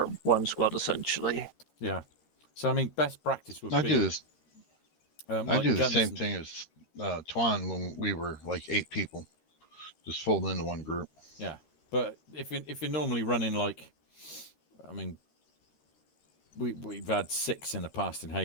one squad essentially. yeah. So I mean, best practice would I be do this. I like do the guns same and- thing as Twan when we were like 8 people, just fold into one group. Yeah, but if you're normally running like, I mean, we've had 6 in the past in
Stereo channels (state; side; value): late; right; 13 ms